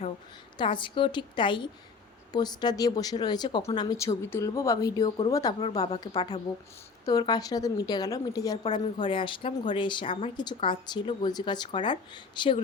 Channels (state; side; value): quieter; right; 4.8 dB